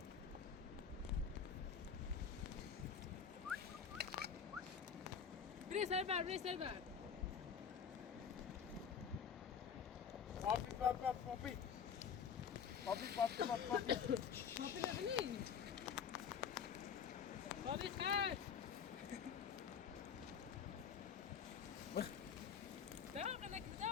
بری سر بر بری سر بر پاپی پاپی پاپی نبینی پاپی خیر داغ لك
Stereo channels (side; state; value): right; quieter; 7.0 dB